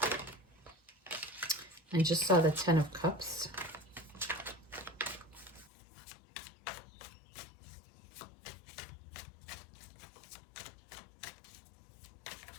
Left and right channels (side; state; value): right; drops out; at 5.7 s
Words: I just saw the 10 of Cups.